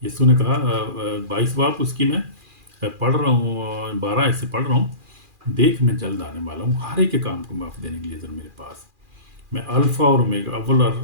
यीशु ने कहा 22 बाप उसकी मैं पढ़ रहा हूँ, 12 ऐसे पढ़ रहा हूँ, देख मैं जल्द आने वाला हूँ, हर एक के काम को माफ़ देने के लिए अजर मेरे पास। मैं अल्फ़ा और ओमेगा, अव्वल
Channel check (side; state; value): left; late; 2.4 ms